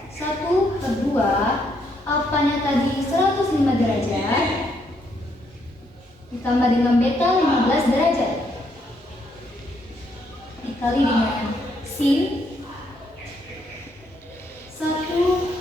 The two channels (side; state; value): both; normal; correlation 0.74